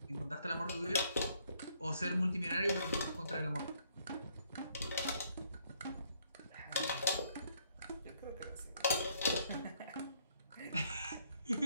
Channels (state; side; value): inverted; both; correlation -0.68